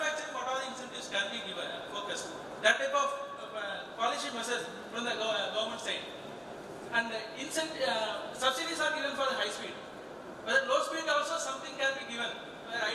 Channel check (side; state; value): both; identical; correlation 1.00